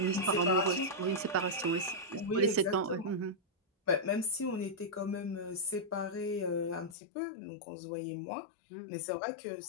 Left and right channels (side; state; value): right; drops out; at 7.0 s